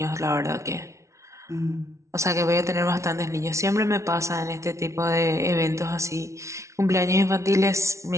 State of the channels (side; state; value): left; late; 0.14 ms